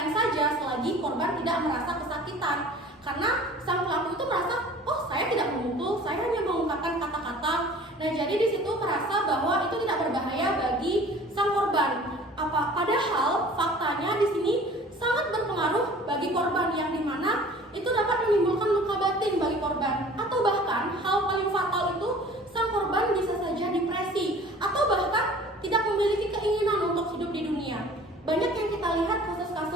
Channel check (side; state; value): both; normal; correlation 0.47